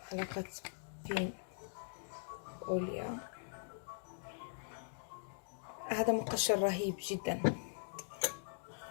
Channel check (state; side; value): silent; right; digital silence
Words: معلقة بين أوليا. هذا مقشر رهيب جدا.